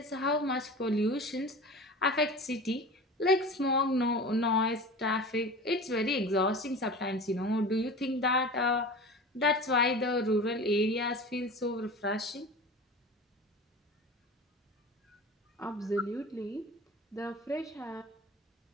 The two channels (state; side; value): normal; both; correlation 0.35